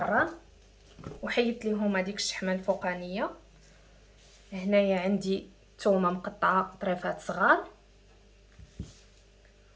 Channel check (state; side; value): identical; both; correlation 1.00